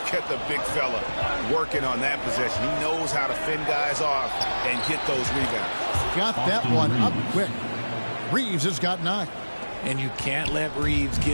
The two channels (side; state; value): both; inverted; correlation -1.00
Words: at the big fella working on that possession. He knows how to fend guys off and get those rebounds. Got that one up quick. Reeves has got 9. And you can't let Reeves